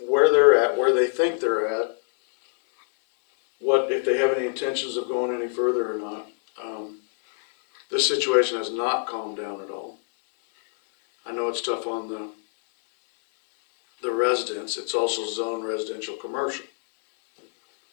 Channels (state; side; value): silent; right; digital silence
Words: they're at, where they think they're at. What, if they have any intentions of going any further or not. This situation has not calmed down at all. I know it's tough on the residents, it's also zone residential commercial,